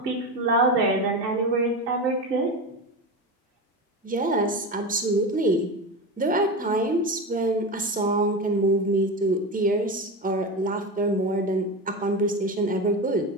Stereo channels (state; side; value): normal; both; correlation 0.22